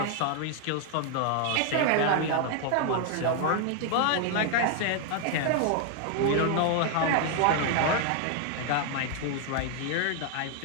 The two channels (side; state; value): both; different; correlation 0.00